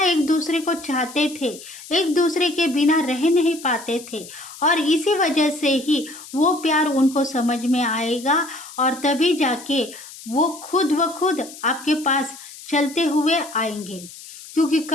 एक दूसरे को चाहते थे, एक दूसरे के बिना रह नहीं पाते थे। और इसी वजह से ही वो प्यार उनको समझ में आएगा, और तभी जाके वो खुद ब खुद आपके पास चलते हुए आएंगे, क्योंकि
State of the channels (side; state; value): left; noise; hiss, 16 dB below the sound